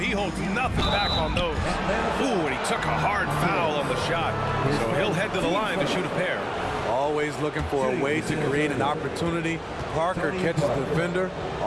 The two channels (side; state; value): both; identical; correlation 1.00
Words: holds nothing back on those. Ooh, and he took a hard foul on the shot. So he'll head to the line to shoot a pair. Always looking for a way to create an opportunity. Parker catches the defender